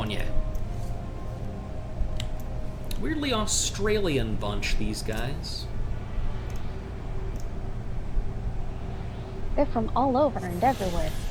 you. Weirdly Australian bunch, these guys. They're from all over and everywhere.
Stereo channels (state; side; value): identical; both; correlation 1.00